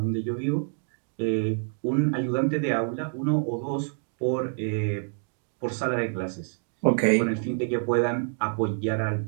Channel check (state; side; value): silent; left; 60 dB below the other